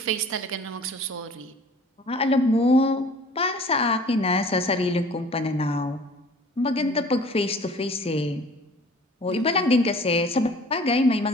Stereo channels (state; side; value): normal; both; correlation 0.48